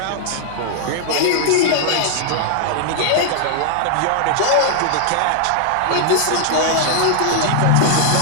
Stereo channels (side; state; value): both; different; correlation 0.00